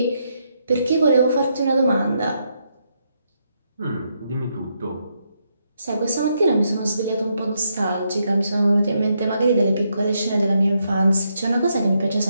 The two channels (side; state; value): both; inverted; correlation -0.79